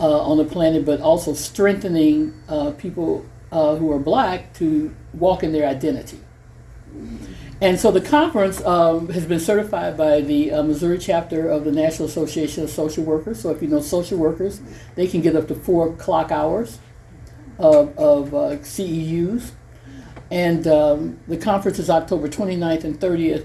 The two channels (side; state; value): both; identical; correlation 1.00